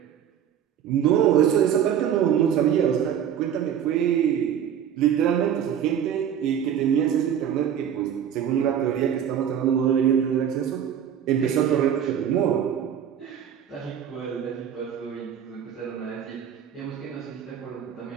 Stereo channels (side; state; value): left; quieter; 9.2 dB